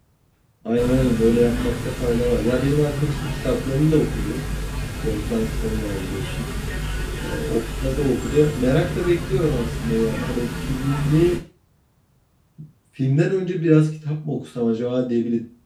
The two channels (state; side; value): identical; both; correlation 1.00